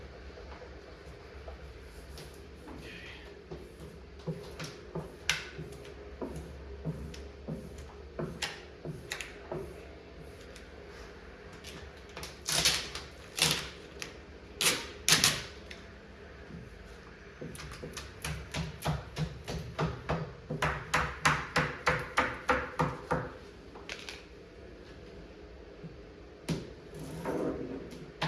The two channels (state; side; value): identical; both; correlation 1.00